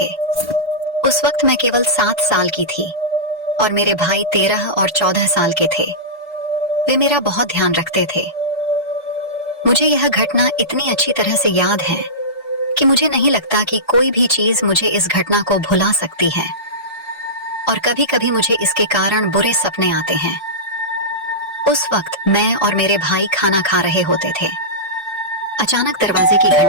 उस वक्त मैं केवल 7 साल की थी और मेरे भाई 13 और 14 साल के थे। वे मेरा बहुत ध्यान रखते थे। मुझे यह घटना इतनी अच्छी तरह से याद है कि मुझे नहीं लगता कि कोई भी चीज मुझे इस घटना को भुला सकती है, और कभी कभी मुझे इसके कारण बुरे सपने आते हैं। उस वक्त मैं और मेरे भाई खाना खा रहे होते थे। अचानक दरवाजे की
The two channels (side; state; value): both; normal; correlation -0.18